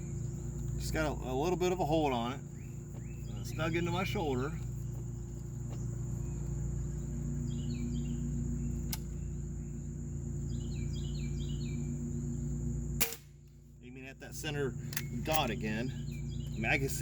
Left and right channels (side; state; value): both; identical; correlation 1.00